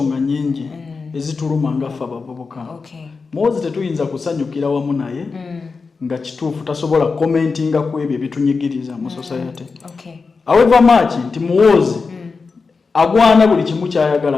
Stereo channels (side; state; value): right; quieter; 4.6 dB